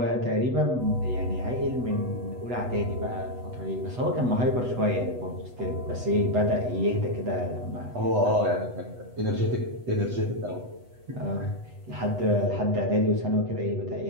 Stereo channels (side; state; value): left; late; 8.1 ms